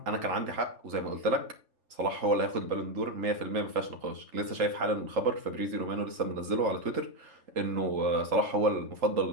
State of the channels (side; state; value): left; late; 3.8 ms